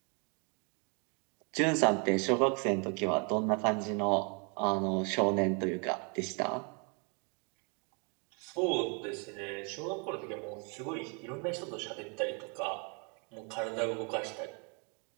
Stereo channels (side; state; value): left; quieter; 35.4 dB